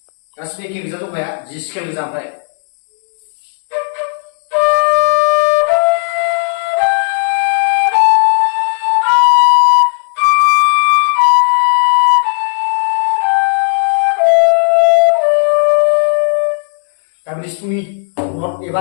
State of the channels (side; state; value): right; silent; digital silence